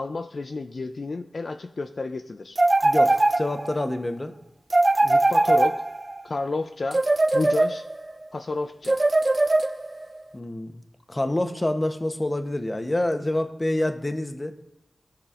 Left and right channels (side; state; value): both; normal; correlation 0.98